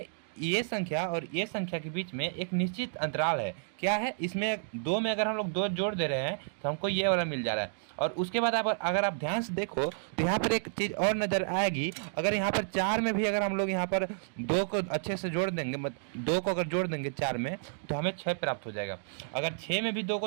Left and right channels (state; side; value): silent; left; digital silence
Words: ये संख्या और ये संख्या के बीच में एक निश्चित अंतराल है। क्या है, इसमें दो में अगर हम लोग 2 जोड़ दे रहे हैं तो हमको ये वाला मिल जा रहा है। और उसके बाद अगर आप ध्यान से देखो तो यहाँ पर एक चीज़ और नज़र आएगी। अगर यहाँ पर 4 में भी अगर हम लोग यहाँ पर 2 को अच्छे से जोड़ देंगे, 2 को अगर जोड़ देंगे 4 में तो हमें 6 प्राप्त हो जाएगा। अगर 6 में भी 2